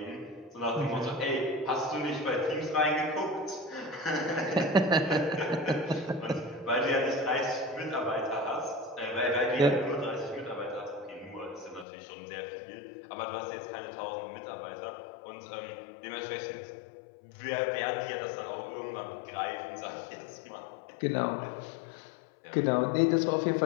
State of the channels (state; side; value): drops out; right; at 11.9 s